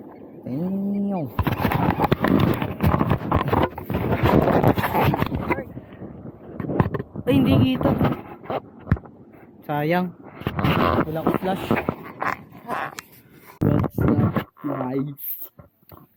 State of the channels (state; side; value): identical; both; correlation 1.00